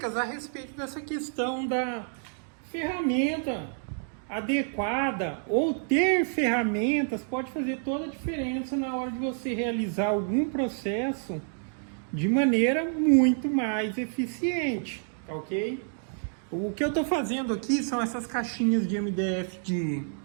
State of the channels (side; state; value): left; silent; digital silence